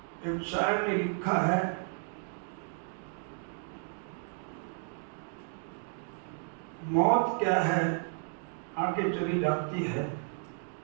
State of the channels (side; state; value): left; silent; 55 dB below the other